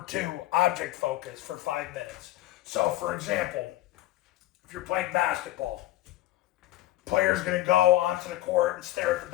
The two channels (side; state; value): right; quieter; 15.3 dB